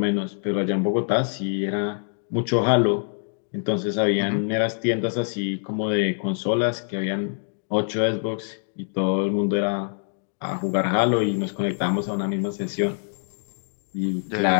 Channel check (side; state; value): right; silent; digital silence